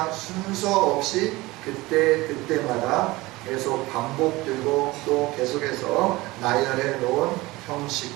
순서 없이 그때마다 계속 반복되고 또 계속해서 나열해 놓은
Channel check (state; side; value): quieter; left; 20.6 dB